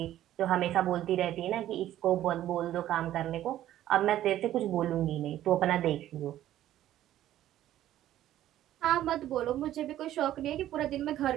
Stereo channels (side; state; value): left; quieter; 12.9 dB